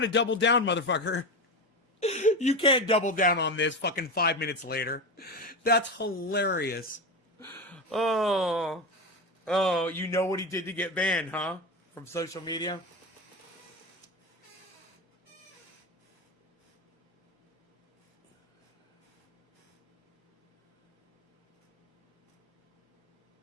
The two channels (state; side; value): normal; both; correlation 0.20